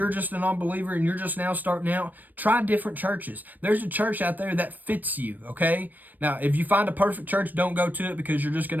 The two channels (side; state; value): left; late; 0.087 ms